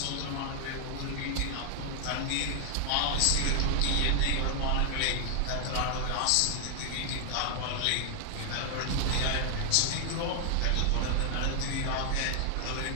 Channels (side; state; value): both; different; correlation 0.00